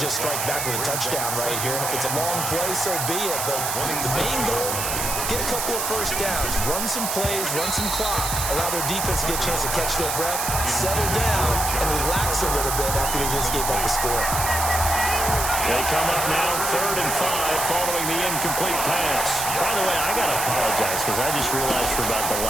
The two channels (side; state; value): right; noise; hiss, 2 dB below the sound